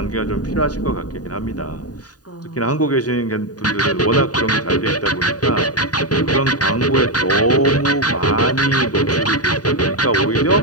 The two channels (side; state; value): right; late; 0.68 ms